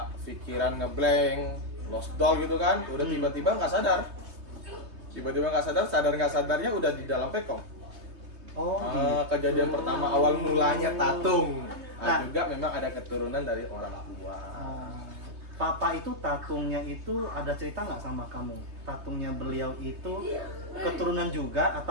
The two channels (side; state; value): left; late; 3.2 ms